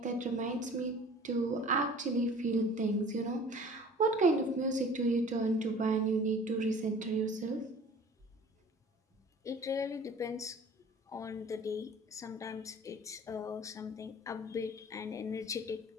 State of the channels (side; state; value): both; normal; correlation 0.46